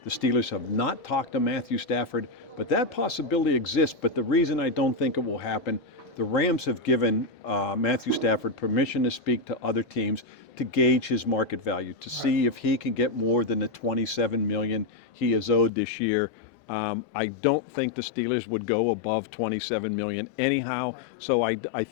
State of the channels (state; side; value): drops out; right; at 15.7 s